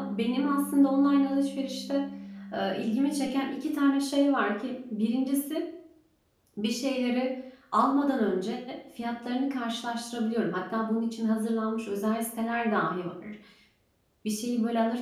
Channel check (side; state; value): both; identical; correlation 1.00